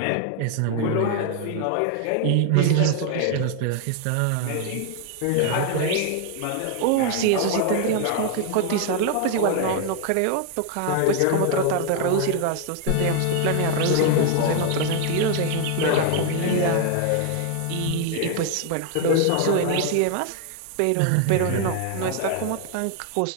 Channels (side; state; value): both; different; correlation 0.00